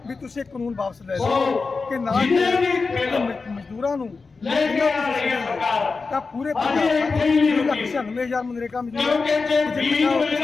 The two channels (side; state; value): right; quieter; 4.3 dB